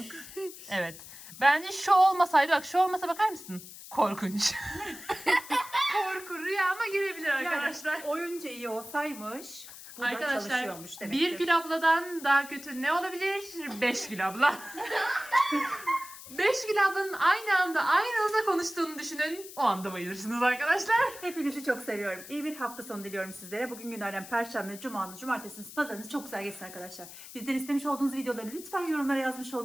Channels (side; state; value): left; noise; hiss, 15 dB below the sound